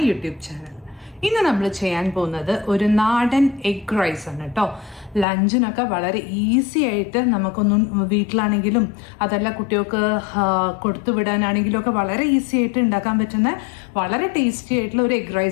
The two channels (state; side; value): drops out; right; at 5.2 s